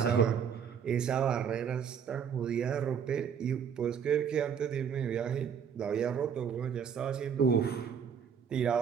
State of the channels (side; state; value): left; quieter; 7.5 dB